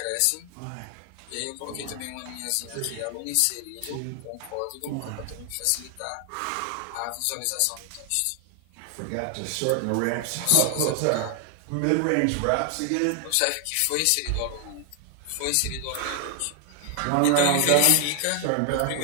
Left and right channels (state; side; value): different; both; correlation 0.00